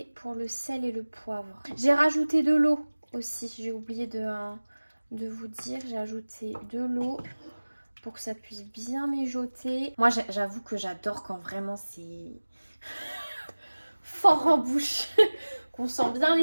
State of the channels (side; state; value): both; inverted; correlation -1.00